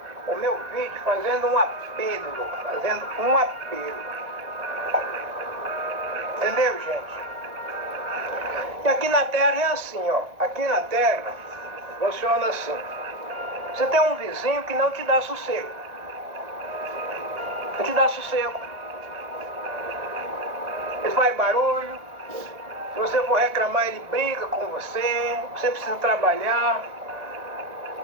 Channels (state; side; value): late; left; 1.7 ms